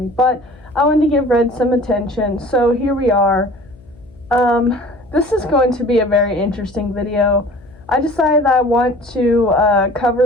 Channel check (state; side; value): noise; left; hum, 25 dB below the sound